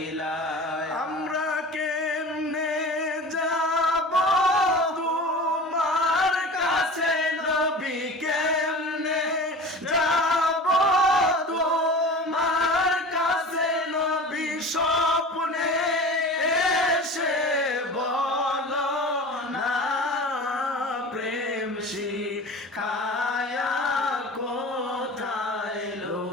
আমরা কেমনে যাব তোমার কাছে নবী কেমনে যাব তোমার কাছে নবী স্বপ্নে এসে বলো না প্রেম শিখায়া কোথায়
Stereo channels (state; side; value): normal; both; correlation 0.36